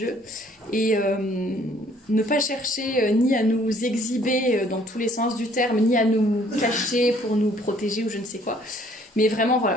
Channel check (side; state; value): both; normal; correlation 0.60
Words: et ne pas chercher ni à nous exhiber dans tous les sens du terme, ni à nous cacher pour nous protéger ou je ne sais quoi. Mais vraiment, voilà,